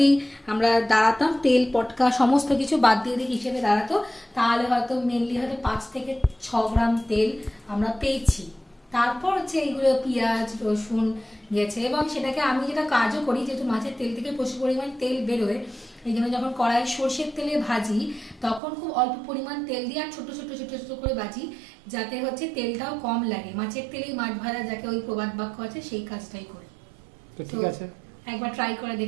আমরা দাঁড়াতাম তেল পটকা সমস্ত কিছু বাদ দিয়ে দিই হিসেবে দাঁড়াতো, তাহলে হয়তো মেনলি হয়তো 5 থেকে 6 গ্রাম তেল আমরা পেয়েছি। তারপর হচ্ছে এইগুলো পেঁয়াজ রসুন গেছে, এবং সেটাকে আমি যেটা কাজও করি, যেহেতু মাছের তেল থেকে প্রচুর পরিমাণ তেল বেরোয়, এই জন্য যখন কড়াই সর্ষের তেলে ভাজি তখন খুব অল্প পরিমাণ তেল দিয়ে আর ছোট ছোট ছোট ছোট করে ভাজি, যাতে হচ্ছে তেলটাও কম লাগে। মাছের তেলেই মাছ ভাজা, যাকে ওই প্রবাদ বাক্য আছে, সেই কাজটাই করি। ঠিক আছে, একবার ট্রাই করে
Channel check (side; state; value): left; drops out; at 18.6 s